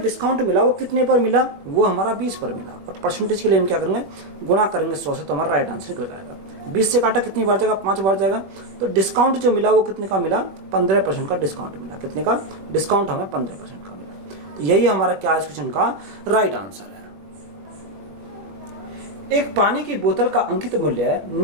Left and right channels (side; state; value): left; late; 21 ms